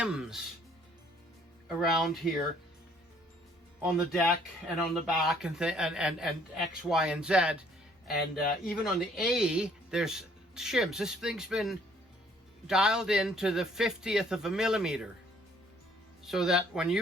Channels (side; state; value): both; normal; correlation 0.61